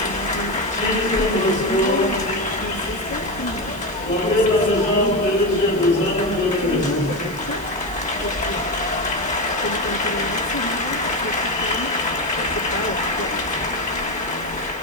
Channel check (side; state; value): right; noise; hiss, 22 dB below the sound